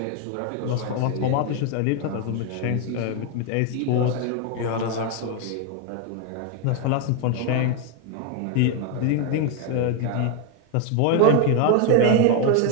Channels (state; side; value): different; both; correlation 0.01